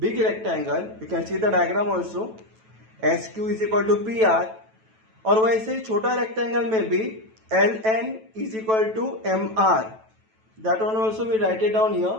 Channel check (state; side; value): late; left; 9.1 ms